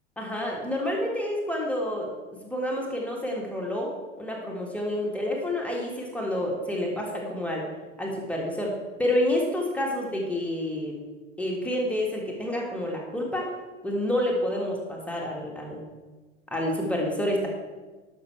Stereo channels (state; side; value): normal; both; correlation 0.58